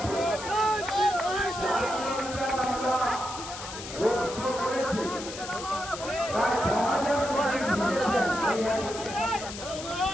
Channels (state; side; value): noise; left; hiss, 10 dB below the sound